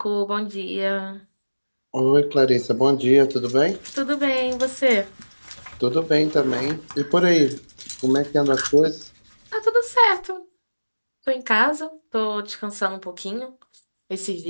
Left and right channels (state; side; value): inverted; both; correlation -1.00